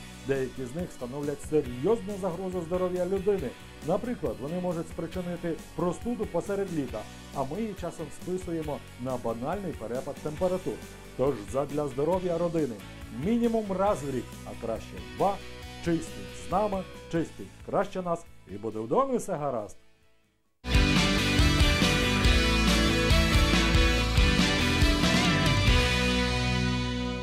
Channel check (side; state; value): both; identical; correlation 1.00